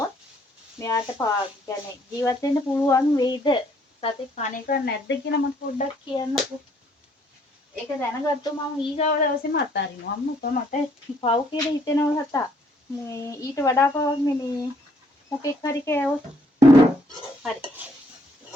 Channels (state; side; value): normal; both; correlation 0.66